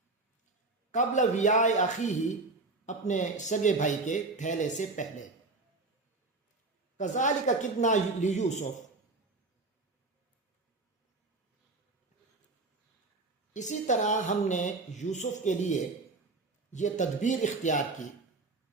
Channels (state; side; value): quieter; left; 3.4 dB